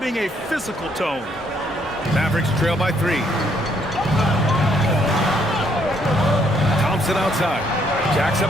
a physical tone. Mavericks trail by 3. Thompson outside. Jacks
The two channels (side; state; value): both; normal; correlation 0.69